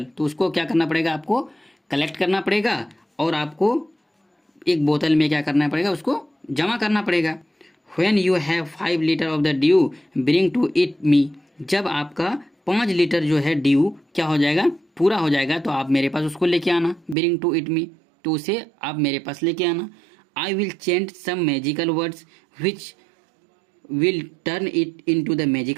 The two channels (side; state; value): left; drops out; at 17.2 s